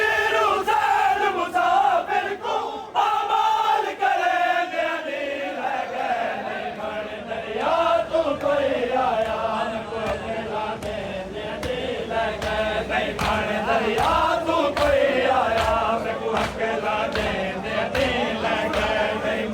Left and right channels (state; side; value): identical; both; correlation 1.00